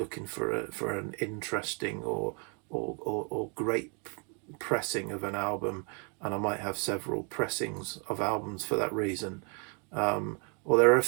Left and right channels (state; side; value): quieter; left; 36.7 dB